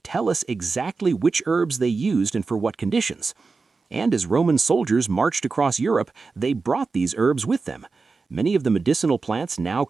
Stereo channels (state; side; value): quieter; left; 4.3 dB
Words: tell us exactly which herbs they used and for what conditions. And as Roman soldiers marched across Europe, they brought these herbs with them. Many of the medicinal plants now